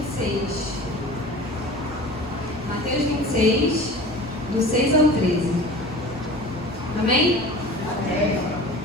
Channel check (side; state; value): both; normal; correlation 0.39